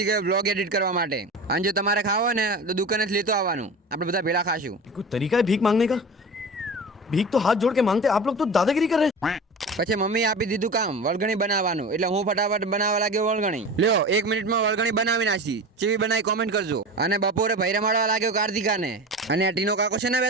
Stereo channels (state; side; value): normal; both; correlation 0.31